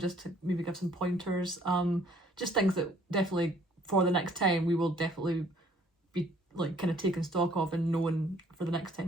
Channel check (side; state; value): both; normal; correlation 0.60